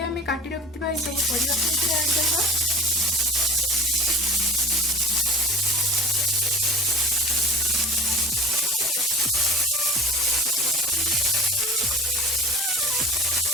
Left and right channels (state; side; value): normal; both; correlation 0.38